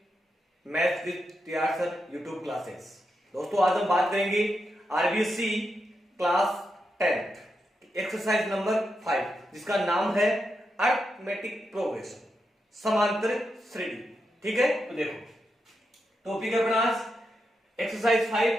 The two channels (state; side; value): normal; both; correlation 0.85